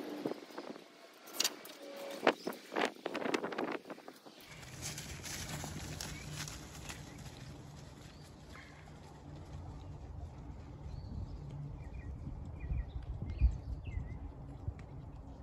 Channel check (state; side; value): identical; both; correlation 1.00